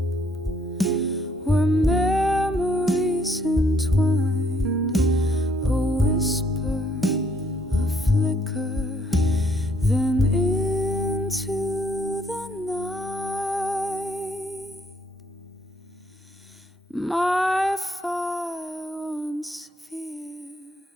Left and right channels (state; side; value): normal; both; correlation 0.67